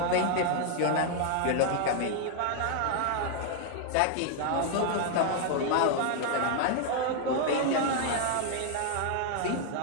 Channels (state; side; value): different; both; correlation 0.00